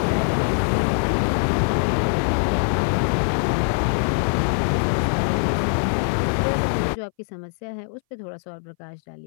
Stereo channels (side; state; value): right; silent; 60 dB below the other